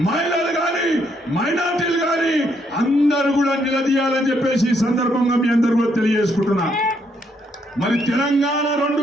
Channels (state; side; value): normal; both; correlation 0.73